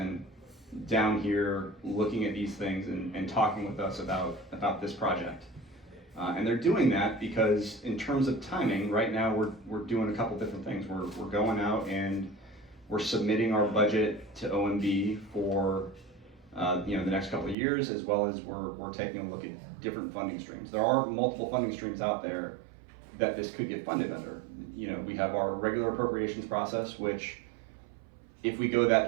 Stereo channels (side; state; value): left; drops out; at 17.6 s